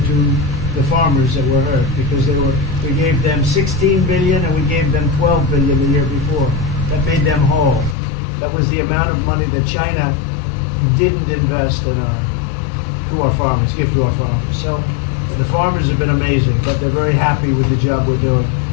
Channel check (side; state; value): right; drops out; at 8.0 s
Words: the farmers that were hurt, because we gave them 16 billion and we gave them 12 billion the year before. That made them whole. That was the amount of money that China didn't invest in to our farmers, give to our farmers. So the farmers have been amazing, but they're very happy with the job we're doing.